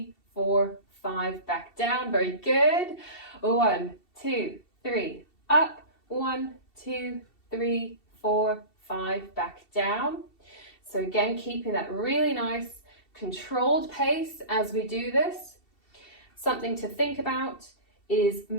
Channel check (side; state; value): right; late; 2.7 ms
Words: 4, 5, back down, very good. 1, 2, 3, up, 1, 2, 3, 4, 5, back down. So again, keeping that really nice controlled pace as we do this. Something to think about is